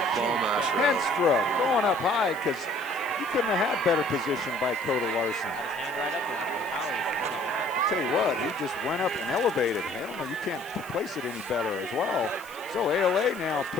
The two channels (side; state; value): left; noise; hiss, 21 dB below the sound